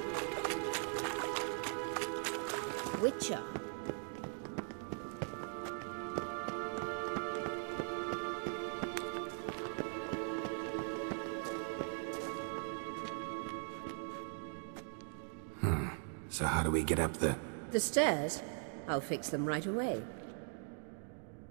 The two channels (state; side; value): silent; left; 51 dB below the other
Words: Witcher. So how do we get up the... The stairs? I'll fix them right away.